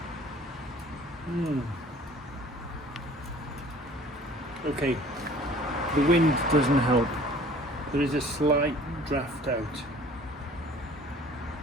Okay, the wind doesn't help. There is a slight draft out.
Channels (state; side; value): normal; both; correlation 0.50